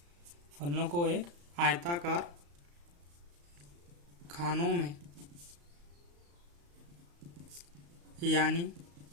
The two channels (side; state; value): left; late; 35 ms